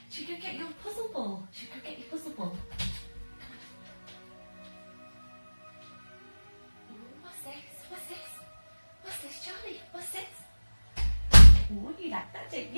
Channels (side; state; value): both; inverted; correlation -1.00